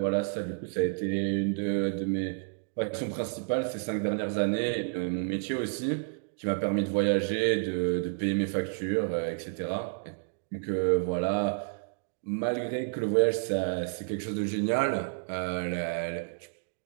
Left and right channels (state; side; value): silent; left; digital silence